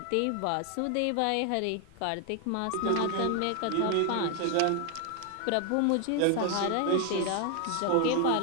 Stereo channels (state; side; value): different; both; correlation 0.00